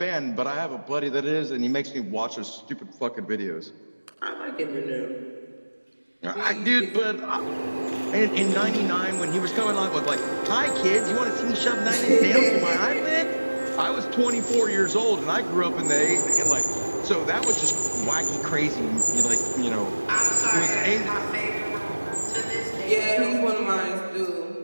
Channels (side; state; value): both; inverted; correlation -1.00